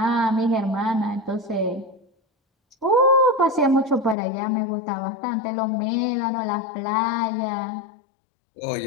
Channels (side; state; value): right; drops out; at 4.2 s